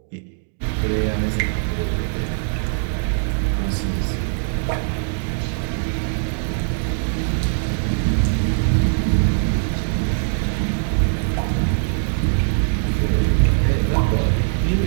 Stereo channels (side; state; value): left; silent; digital silence